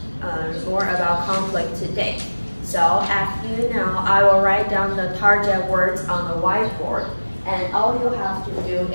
conflict today. So as you know, I will write down the target words on the whiteboard, and all you have to do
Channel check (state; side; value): inverted; both; correlation -1.00